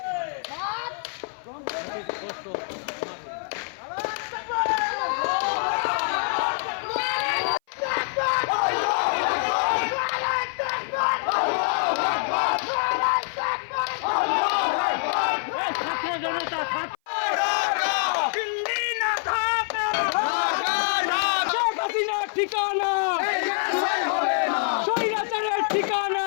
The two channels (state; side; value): silent; right; 57 dB below the other